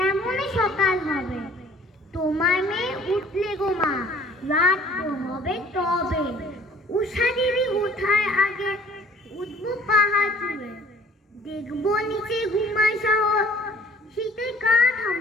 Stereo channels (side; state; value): both; normal; correlation 0.54